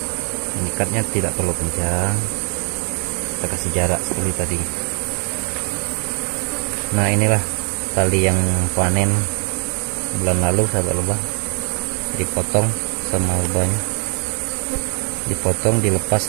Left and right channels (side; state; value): left; quieter; 38.3 dB